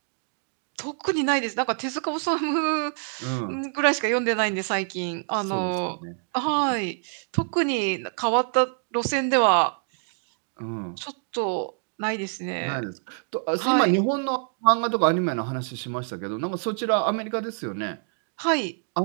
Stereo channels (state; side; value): silent; left; 61 dB below the other